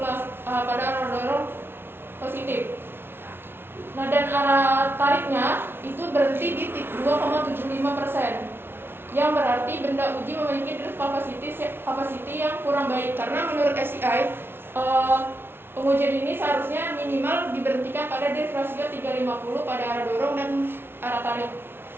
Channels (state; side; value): late; left; 0.11 ms